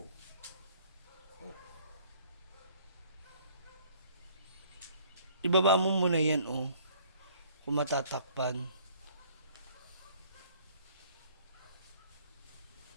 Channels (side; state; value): both; inverted; correlation -0.57